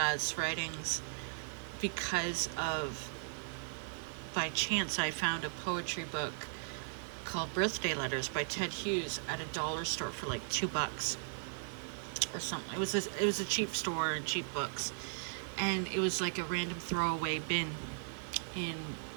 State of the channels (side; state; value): left; silent; digital silence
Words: writings because of, by chance, I found a poetry book called Birthday Letters by Ted Hughes at a dollar store for like $2 or something. It was a cheap store and cheap books, and it was like a random throwaway bin in